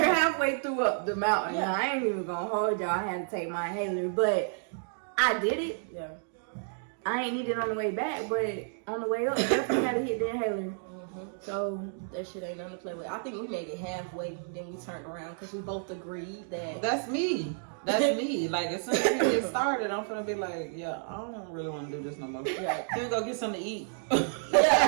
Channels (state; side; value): silent; left; digital silence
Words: halfway through up the mountain. Yeah. I ain't even gonna hold y'all. I had to take my inhaler, but I did it. Yeah. I ain't need it on the way back, but on the way up, definitely had to hit the inhaler. Mm-hmm. So that shit ain't nothing to play with. I think we made it halfway, then we turned around because we both agreed that. That's me. That's me. Like, as soon as we get started, I'm gonna be like, yeah, I don't really want to do this no more. Yeah, can we go get something to eat?